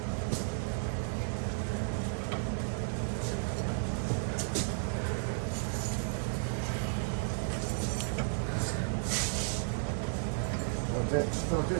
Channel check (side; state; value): left; silent; digital silence